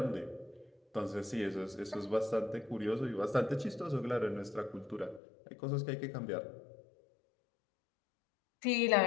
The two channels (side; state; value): right; drops out; at 5.2 s